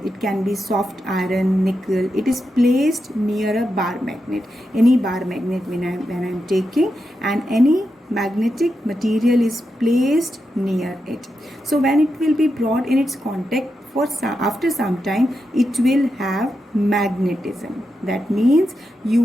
it can be soft iron, nickel, it is placed near a bar magnet, any bar magnet when I am taking, and any magnetic material is placed near it. So when it will be brought in its contact, after some time it will have magnetism. That means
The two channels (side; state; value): both; normal; correlation 0.87